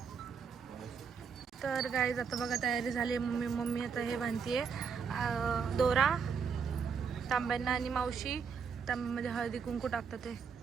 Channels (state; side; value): quieter; left; 6.1 dB